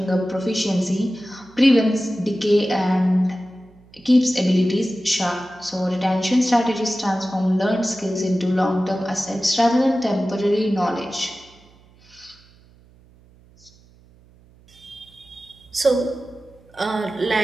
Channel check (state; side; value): noise; right; hum, 28 dB below the sound